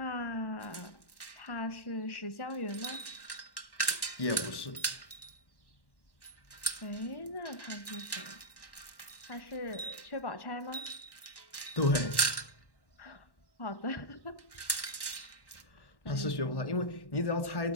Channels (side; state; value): right; late; 1.1 ms